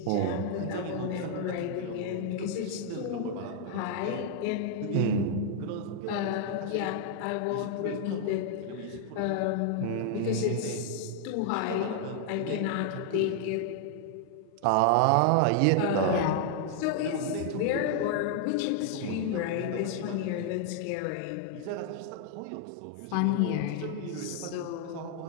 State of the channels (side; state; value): both; different; correlation 0.00